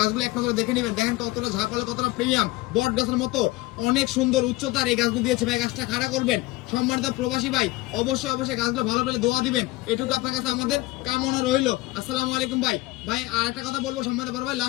এক নজরে দেখে নেবেন। দেখেন কতটা ঝাপালে, কতটা প্রিমিয়াম, বট গাছের মতো অনেক সুন্দর উচ্চতার এই গাছগুলো দিয়েছে। ভাই, গাছটা খাড়া করবেন। সম্মানিত প্রবাসী ভাই, অবশ্যই অবশ্যই গাছগুলো ভালো পেলে দোয়া দিবেন, এটুকু আপনার কাছে আমাদের কামনা রইল। আসসালামু আলাইকুম ভাই। ভাই, আর একটা কথা বলবো, সম্মানিত বড় ভাই,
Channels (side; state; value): right; quieter; 20.0 dB